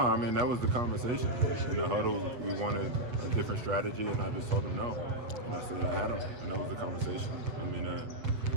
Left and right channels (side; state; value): left; late; 8.3 ms